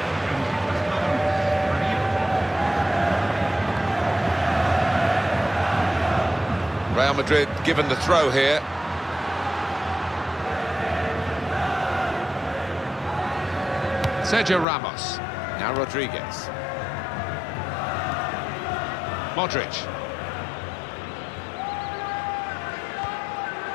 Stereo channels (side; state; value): right; drops out; at 14.7 s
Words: Real Madrid given the throw here. Sergio Ramos. Now Rodriguez. Modric.